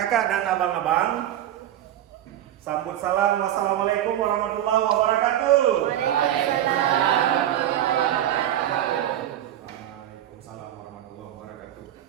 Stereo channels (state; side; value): quieter; left; 11.9 dB